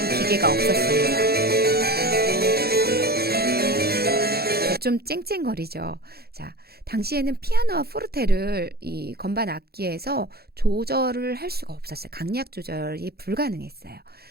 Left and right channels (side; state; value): left; late; 0.46 ms